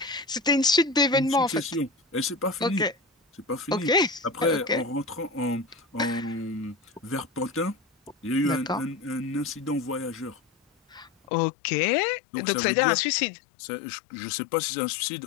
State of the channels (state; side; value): drops out; right; at 11.1 s